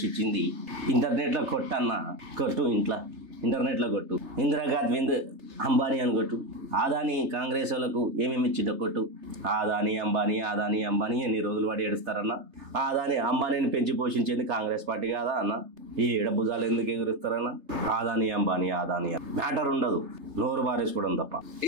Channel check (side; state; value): left; late; 3.3 ms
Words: ఇంటర్నెట్లో కొట్టు, ఇంటర్నెట్లో కొట్టు, ఇందిరాగాంధీ అంబానీ అని కొట్టు. ఆదాని కాంగ్రెస్ వాళ్ళకు ఏమేమి ఇచ్చిందో కొట్టు. ఆదాని అంబానీ ఎన్ని రోజులు వాడి ఏడుస్తారన్న? ఆదాని అంబానీని పెంచి పోషించేది కాంగ్రెస్ పార్టీ కాదా అన్న? ఈ భుజాలు ఎందుకు ఎగురుస్తారన్న? ఆదాని అంబానీ మ్యాటర్ ఉండదు, నోరు బారేసుకోవడం తప్ప.